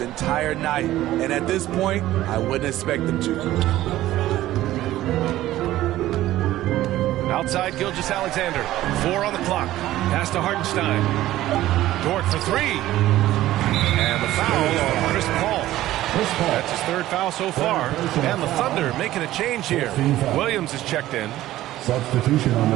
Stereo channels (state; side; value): quieter; left; 14.9 dB